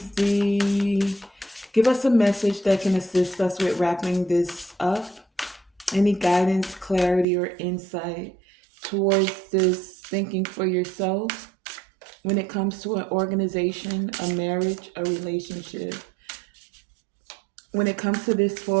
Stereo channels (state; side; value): drops out; left; at 7.2 s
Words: give us a message that can assist us with wrapping this up? Any guidance, clarity, or insight towards this thinking for yourself when it comes to an organization, a marriage, a relationship, when it comes to this